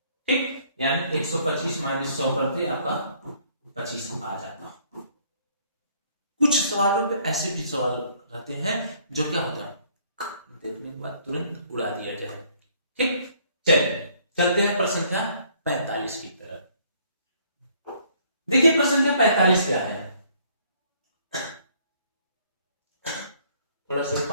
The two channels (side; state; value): both; inverted; correlation -0.62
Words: ठीक, यानी 125 माइनस 100 करते आपका 25 आ जाता। कुछ सवालों पे ऐसे भी सवाल रहते हैं जो क्या होता है, देखने के बाद तुरंत उड़ा दिया जाए। ठीक, चलिए चलते हैं प्रश्न संख्या 45 की तरफ। देखिए प्रश्न संख्या 45 क्या है, थोड़ा सा